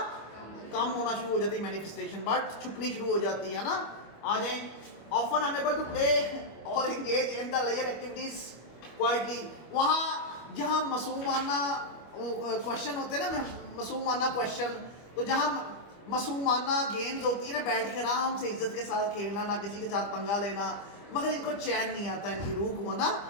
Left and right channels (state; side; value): late; right; 25 ms